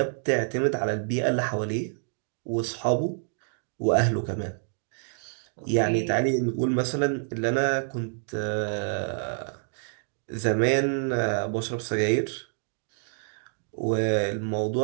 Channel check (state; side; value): silent; left; digital silence